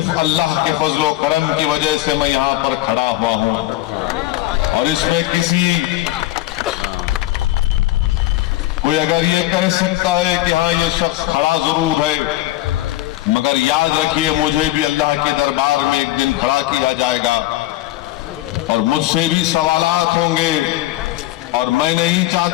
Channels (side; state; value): right; quieter; 16.1 dB